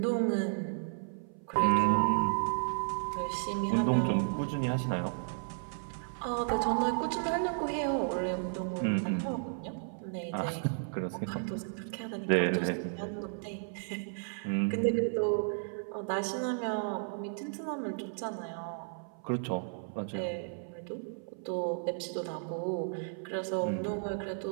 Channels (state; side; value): silent; left; 55 dB below the other